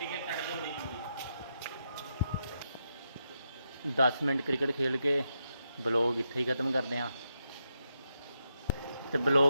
है, कट दो नहीं। 10 ਮਿੰਟ ਕ੍ਰਿਕਟ ਖੇਲ ਕੇ ਬਲੌਗ ਇੱਥੇ ਹੀ ਖਤਮ ਕਰਦੇ ਹਾਂ। ਤੇ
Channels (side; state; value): both; inverted; correlation -0.83